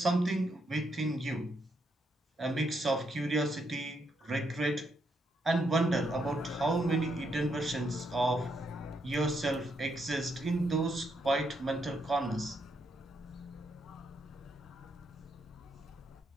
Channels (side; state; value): both; normal; correlation 0.78